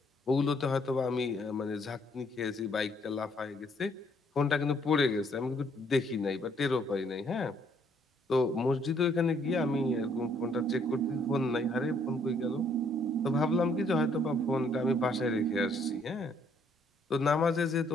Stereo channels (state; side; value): normal; both; correlation 0.67